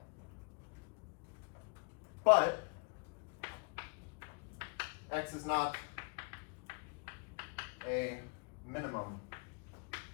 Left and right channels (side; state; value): right; quieter; 35.8 dB